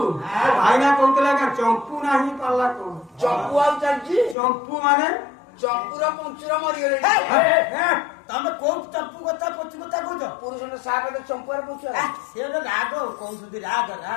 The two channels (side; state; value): right; drops out; at 4.4 s